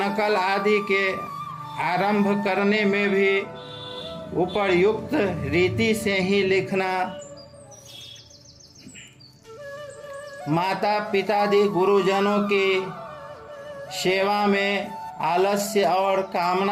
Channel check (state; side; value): identical; both; correlation 1.00